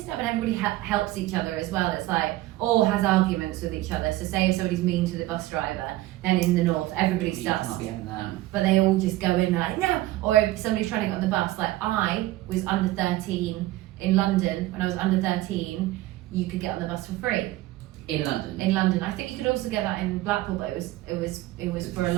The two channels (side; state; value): left; quieter; 17.0 dB